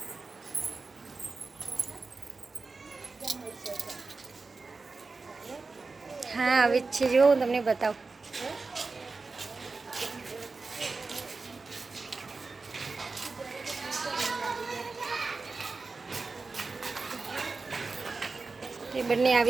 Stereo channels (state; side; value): quieter; left; 4.0 dB